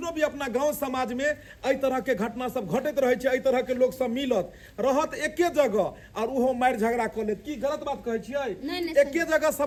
भी अपना गांव समाज में एहि तरह के घटना सब घटैत रहे छै। एहि तरह के लोग सब मिलत रहत एके जगह और उहो मारि झगड़ा क लेत। की गलत बात कहै छियै? एके जगह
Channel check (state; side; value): identical; both; correlation 1.00